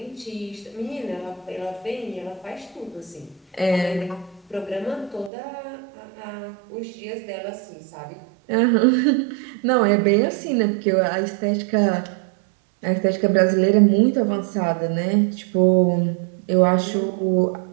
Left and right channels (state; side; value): drops out; left; at 5.3 s